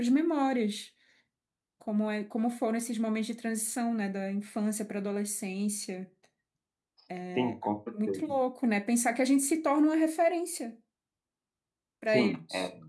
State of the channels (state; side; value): identical; both; correlation 1.00